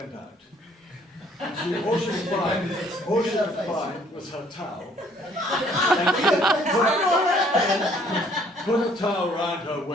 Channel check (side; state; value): both; normal; correlation 0.61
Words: out. And all she could find was her towel. And she put a towel around her